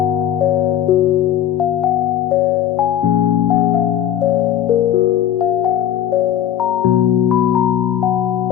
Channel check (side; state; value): right; quieter; 10.7 dB